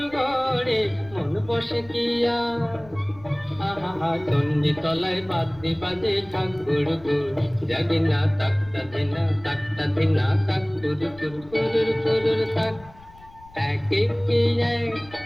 ঘরে, মন বসে কি আর। আহা চণ্ডী তলায় বাদ্যি বাজে ঠাকুর গুর, জাগি না তাকতা ধিনা তাকতা ধিনা তাক কুরুর কুরুর কুরুর তাক। এক একে এক,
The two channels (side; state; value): left; noise; rumble, 22 dB below the sound